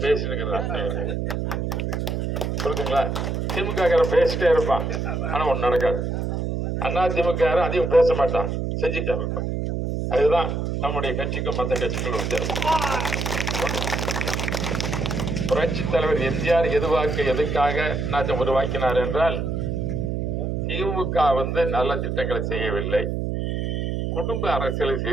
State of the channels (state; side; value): noise; right; hum, 1 dB below the sound